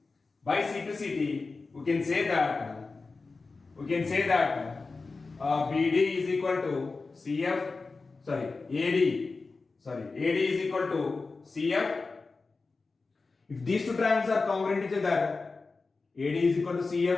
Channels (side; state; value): right; quieter; 4.0 dB